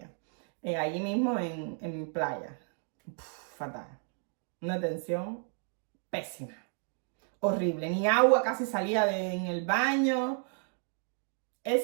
Allí mismo en playa. Fatal. Una atención pésima. Horrible. Ni agua casi salía en el baño.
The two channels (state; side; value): silent; left; 56 dB below the other